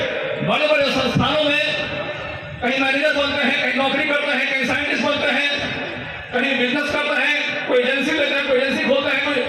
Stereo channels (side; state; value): both; identical; correlation 1.00